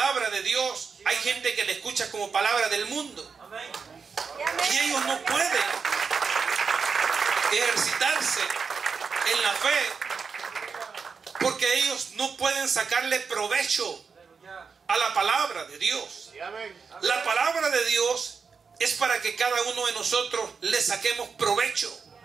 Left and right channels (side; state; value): left; quieter; 5.5 dB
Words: de Dios, hay gente que la escucha como palabra del mundo. Y ellos no pueden ejercitarse en la fe, porque ellos no pueden sacarle provecho a la palabra de Dios. La palabra de Dios es para que cada uno de nosotros le saquemos provecho.